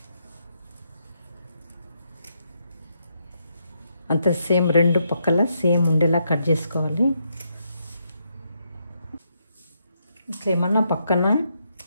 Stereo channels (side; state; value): both; inverted; correlation -0.78